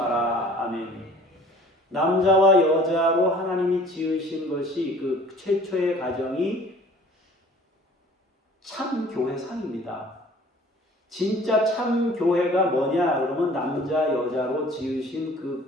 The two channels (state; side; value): normal; both; correlation 0.50